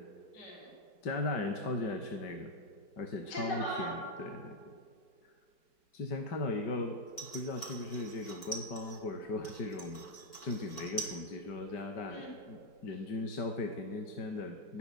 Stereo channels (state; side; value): late; right; 4.5 ms